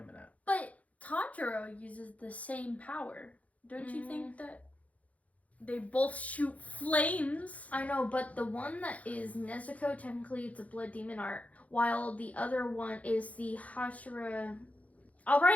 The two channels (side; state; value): right; late; 0.068 ms